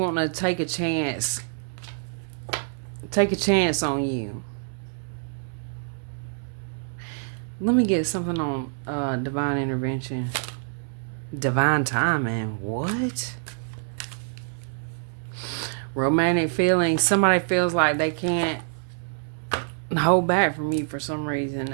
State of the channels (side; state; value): left; silent; 61 dB below the other